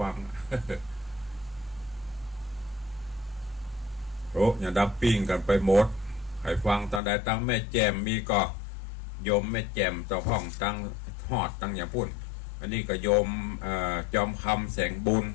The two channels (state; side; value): drops out; right; at 7.0 s